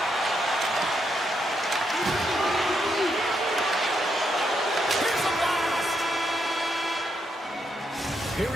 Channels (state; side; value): normal; both; correlation 0.79